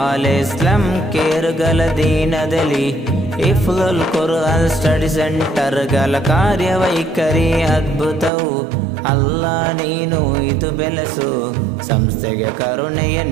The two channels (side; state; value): left; drops out; at 8.3 s